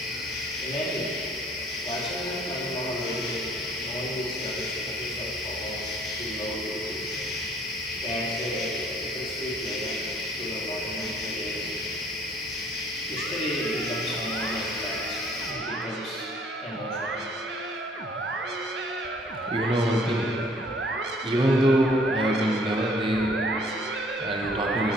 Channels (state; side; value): normal; both; correlation 0.58